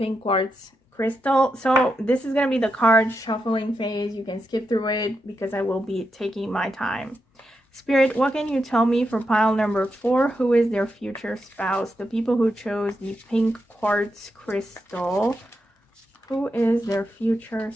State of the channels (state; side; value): normal; both; correlation 0.85